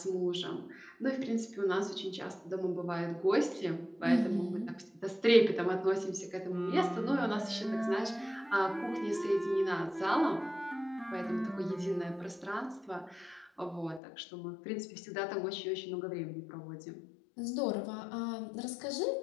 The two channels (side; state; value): right; drops out; at 14.0 s